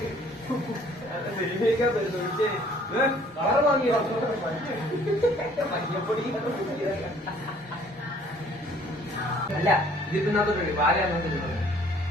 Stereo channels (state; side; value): normal; both; correlation 0.57